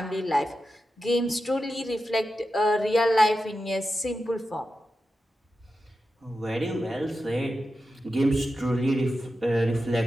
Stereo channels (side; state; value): both; normal; correlation 0.91